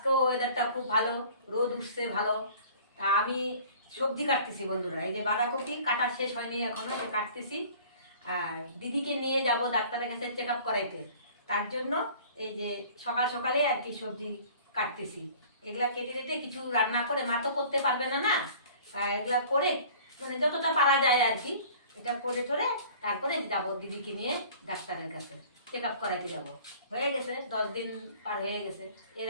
ওয়েদারটা খুব ভালো, রোদ উঠছে ভালো। তা আমি সবজি কাটতেছি বন্ধুরা, এই যে বাঁধাকপি কাটা শেষ হয়নি এখনো, সে কাটতেছি। আর দিদিকে নিয়ে যাব ডাক্তারের কাছে চেক আপ করাইতে, তার জন্য এই যে সকাল সকালে আর কি সবজি কাটতেছি। এগুলা কেটে কেটে কিছু রান্না করে, মা তো করতে পারবে না না, এগুলা করে মানে যতটা পারা যায় আর কি এটা করে টোরে তারপরে যাব দিদিকে নিয়ে ডাক্তারের কাছে চেক আপ করাইতে যাব। হয়ে গেছে 10 দিন পার হয়ে গেছে, এর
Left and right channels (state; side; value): inverted; both; correlation -0.47